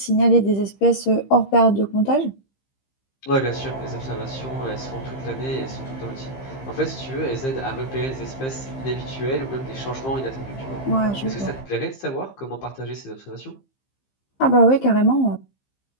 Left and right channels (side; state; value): right; late; 15 ms